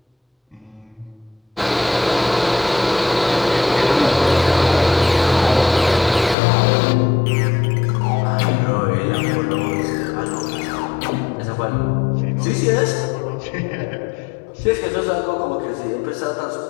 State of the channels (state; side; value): drops out; right; at 6.4 s